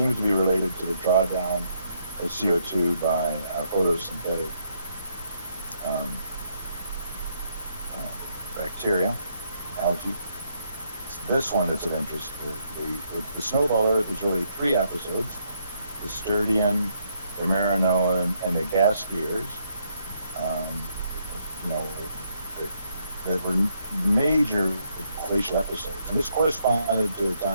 to be related to the drawdown of CO2 by photosynthetic bacteria, algae. It's this one that's of interest. The Snowball Earth is really 3 episodes: the Sturdian, the Marinoan, and the gas skiers. That were major glacial episodes. And this corresponded to a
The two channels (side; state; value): both; inverted; correlation -0.74